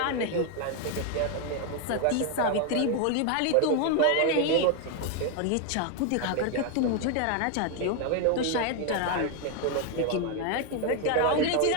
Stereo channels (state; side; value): different; both; correlation 0.01